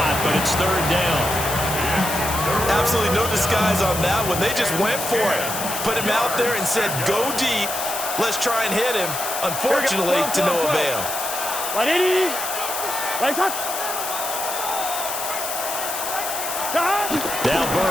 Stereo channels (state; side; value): noise; left; hiss, 5 dB below the sound